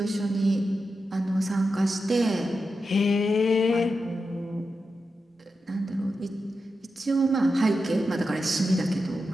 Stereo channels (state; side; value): normal; both; correlation 0.89